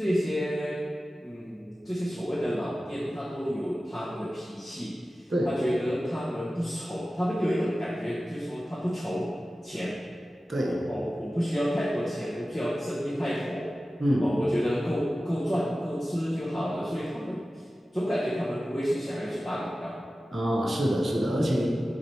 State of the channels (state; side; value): normal; both; correlation 0.95